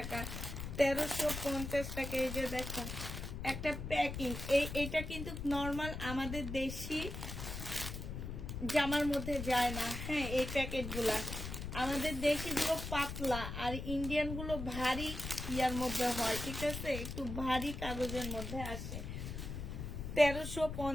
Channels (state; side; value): noise; left; rumble, 6 dB below the sound